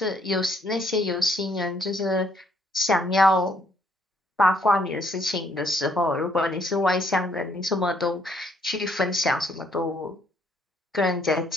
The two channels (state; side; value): normal; both; correlation 0.68